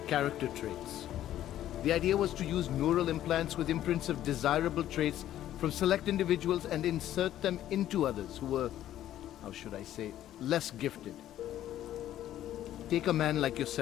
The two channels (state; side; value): quieter; right; 12.4 dB